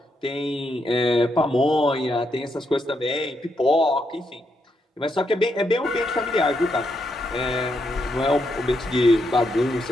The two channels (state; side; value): normal; both; correlation 0.80